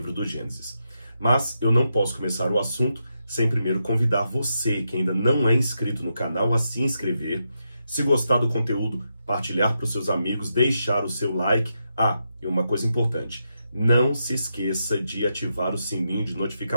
do Gênesis. Mas eu não posso começar o assunto sem primeiro convidar você, que ainda não é inscrito no canal, a se inscrever. Se gostar do conteúdo, partilhar para os seus amigos, deixar o seu like. E uma coisa importante, não se esqueça de ativar o sininho de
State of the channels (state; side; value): inverted; both; correlation -0.84